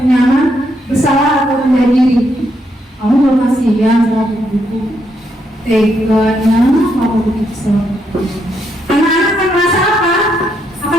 nyaman, bersalah atau rendah diri. Kamu belum kasihan sama buku, teganya kamu begitu. Anak-anak akan merasa apa?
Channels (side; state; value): both; normal; correlation 0.77